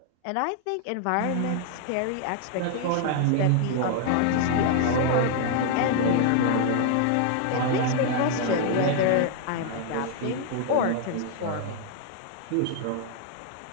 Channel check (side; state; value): both; different; correlation 0.00